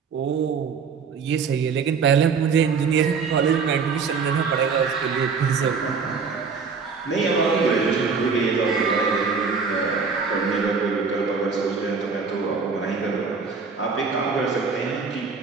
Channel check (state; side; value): quieter; left; 5.4 dB